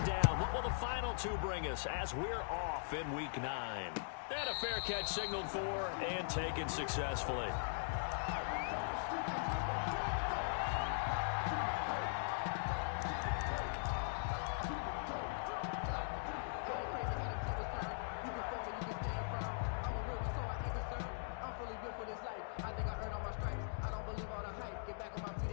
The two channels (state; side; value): silent; right; digital silence